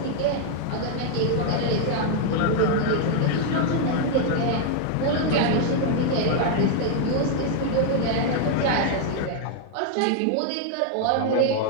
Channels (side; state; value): both; different; correlation 0.00